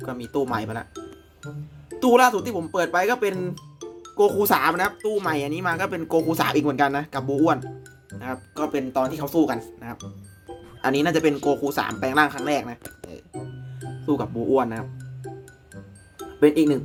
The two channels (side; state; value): both; identical; correlation 1.00